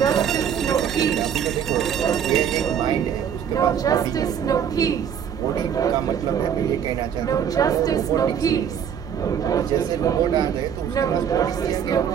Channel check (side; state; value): left; quieter; 8.3 dB